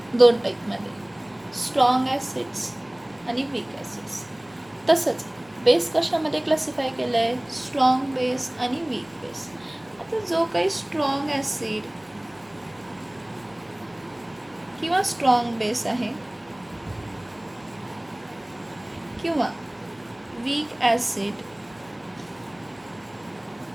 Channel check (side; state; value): left; noise; hum, 29 dB below the sound